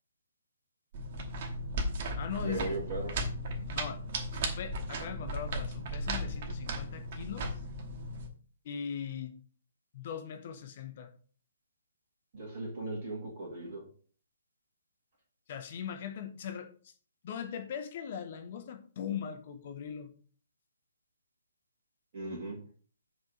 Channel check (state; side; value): inverted; both; correlation -0.48